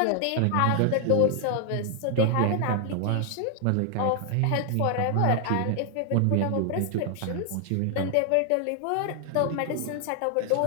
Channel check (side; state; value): both; different; correlation 0.00